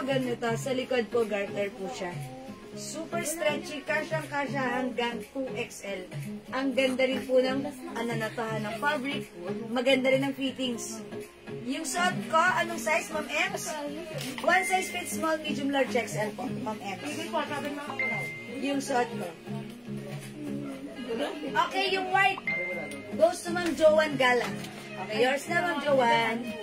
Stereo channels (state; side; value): identical; both; correlation 1.00